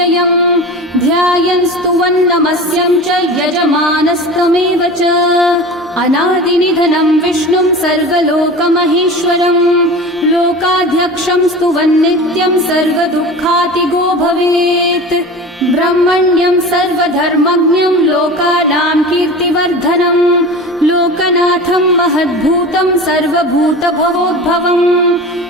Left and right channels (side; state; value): both; normal; correlation 0.33